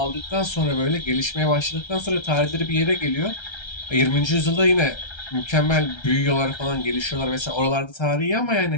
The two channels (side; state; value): right; late; 1.3 ms